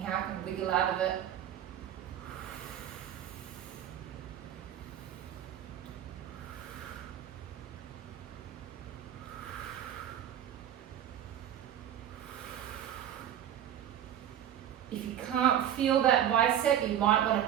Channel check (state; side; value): quieter; left; 10.5 dB